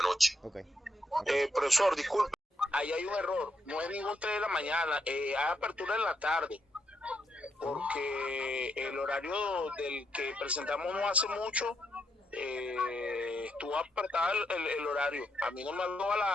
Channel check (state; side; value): normal; both; correlation 0.79